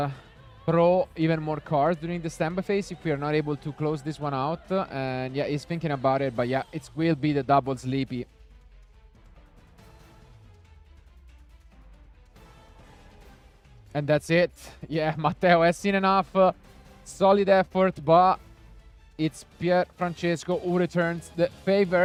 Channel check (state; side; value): identical; both; correlation 1.00